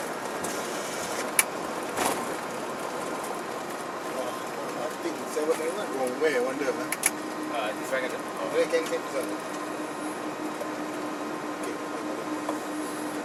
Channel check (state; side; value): identical; both; correlation 1.00